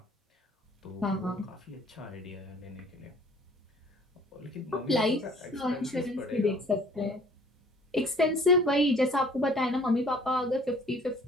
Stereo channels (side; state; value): both; normal; correlation 0.53